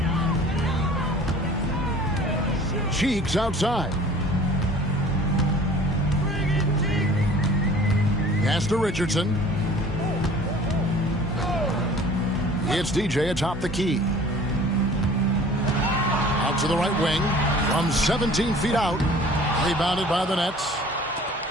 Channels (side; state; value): both; normal; correlation 0.47